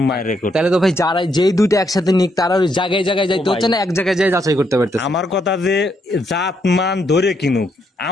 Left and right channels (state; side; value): normal; both; correlation 0.76